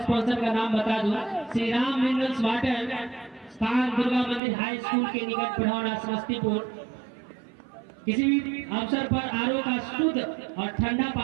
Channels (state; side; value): drops out; left; at 4.4 s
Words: स्पॉन्सर का नाम बता दूं, श्री राम मिनरल्स वाटर, स्थान दुर्गा मंदिर हाई स्कूल के निकट पढ़ौना समस्तीपुर। किसी भी अवसर पर आरओ का शुद्ध और ठंडा